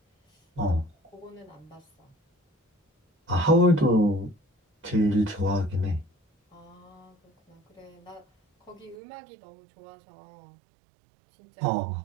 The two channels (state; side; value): drops out; left; at 9.0 s